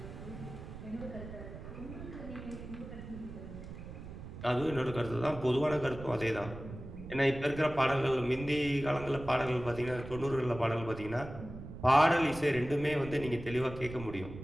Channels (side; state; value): right; noise; rumble, 12 dB below the sound